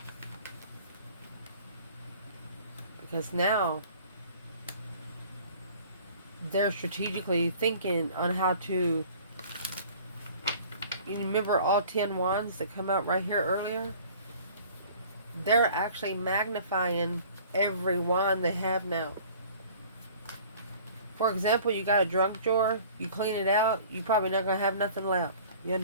Because now they're strategically thinking on how to, you remember all 10 wands that come out right here earlier? They're actually magnifying every wand they have now For example, you got a junk drawer, you clean it out, you're probably not going to have nothing left. You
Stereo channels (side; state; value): both; inverted; correlation -0.49